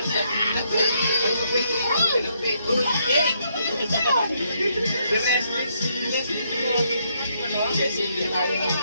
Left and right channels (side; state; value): both; inverted; correlation -0.74